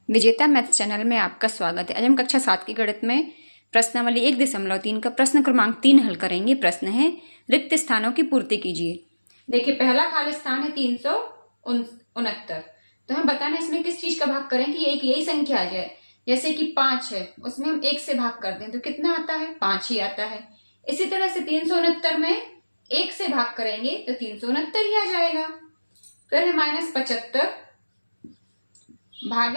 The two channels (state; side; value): inverted; both; correlation -1.00